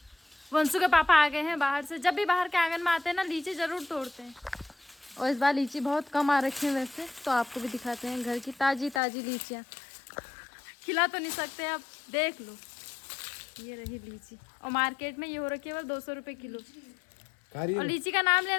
वंशु के पापा आ गए हैं बाहर से। जब भी बाहर के आंगन में आते हैं ना, लीची ज़रूर तोड़ते हैं। और इस बार लीची बहुत कम आ रखी है वैसे, तो आपको भी दिखाते हैं घर की ताज़ी ताज़ी लीचियाँ। खिला तो नहीं सकते, अब देख लो। ये रही लीची, और मार्केट में ये हो रखी है बस 200 रुपये किलो। और लीची का नाम ले,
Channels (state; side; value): drops out; right; at 9.0 s